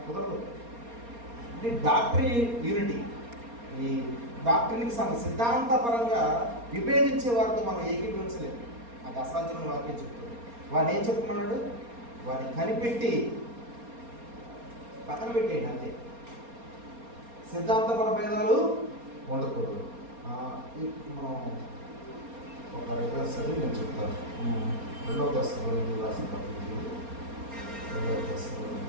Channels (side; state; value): left; late; 4.3 ms